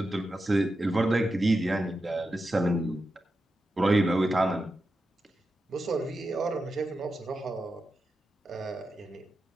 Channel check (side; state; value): both; normal; correlation 0.89